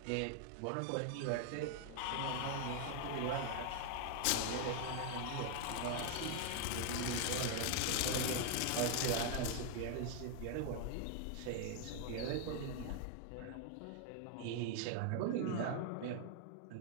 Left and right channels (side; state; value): both; different; correlation 0.00